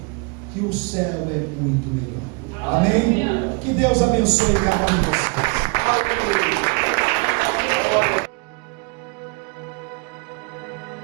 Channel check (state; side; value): quieter; left; 31.7 dB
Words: que o céu é muito melhor. Amém? Que Deus abençoe cada um de vocês.